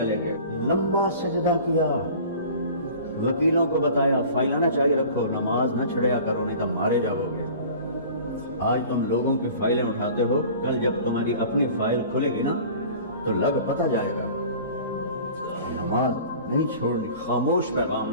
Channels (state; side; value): inverted; both; correlation -0.43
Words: گئے، لمبا سجدہ کیا. وکیلوں کو بتایا فائلیں نہ چاہیے رکھو، نماز نہ چھڑیا کرو نہیں تو مارے جاؤ گے. آج تم لوگوں کی فائلیں اٹھاتے ہو، کل جب تمہاری اپنی فائل کھلے گی نا تو لگ پتہ جائے گا. نماز نہیں چھوڑنی، خاموش پیغام